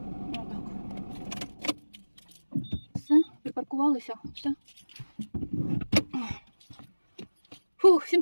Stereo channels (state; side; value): inverted; both; correlation -1.00